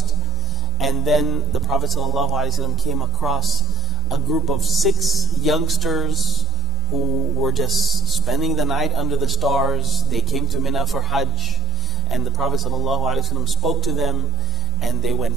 And then the Prophet ﷺ came across a group of 6 youngsters who were just spending the night under the stars. They came to Mina for Hajj, and the Prophet ﷺ spoke to them, and they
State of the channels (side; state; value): both; normal; correlation 0.48